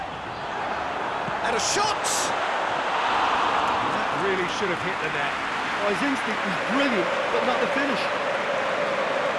And a shot! That really should have hit the net. Oh, his instinct was brilliant, but not the finish.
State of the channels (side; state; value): both; identical; correlation 1.00